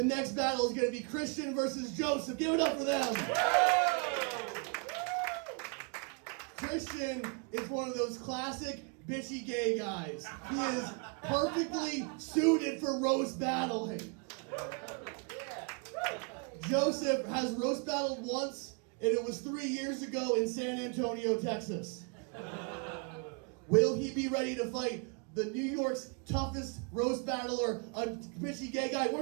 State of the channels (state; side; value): quieter; left; 35.4 dB